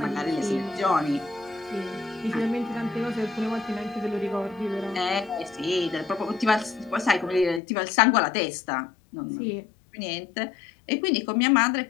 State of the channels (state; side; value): drops out; right; at 7.6 s